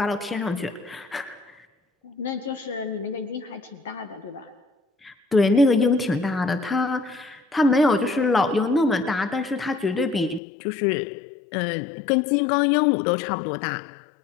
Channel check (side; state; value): right; drops out; at 10.4 s